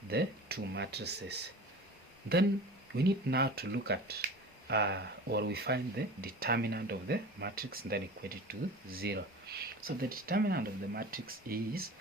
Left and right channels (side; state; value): both; normal; correlation 0.37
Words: the two matrices. Then we need now to look at or we find the determinant of the matrix and then equate it to 0. So the determinant of the matrix is,